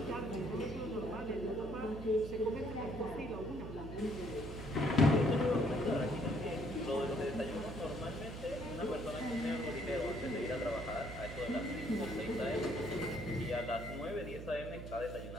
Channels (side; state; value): right; noise; hum, 9 dB below the sound